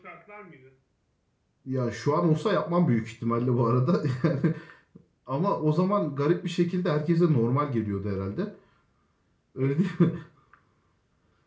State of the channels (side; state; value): both; identical; correlation 1.00